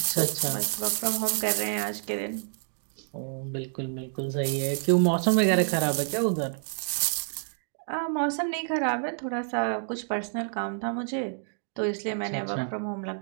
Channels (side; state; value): left; silent; 59 dB below the other